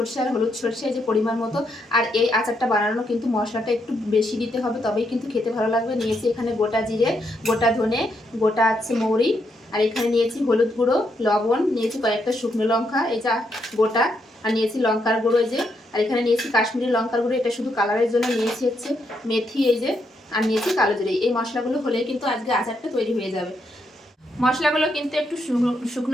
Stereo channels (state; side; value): normal; both; correlation 0.78